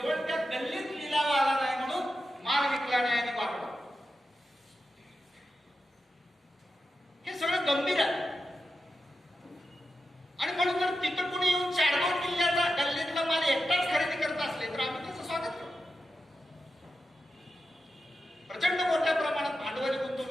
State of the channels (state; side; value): normal; both; correlation 0.90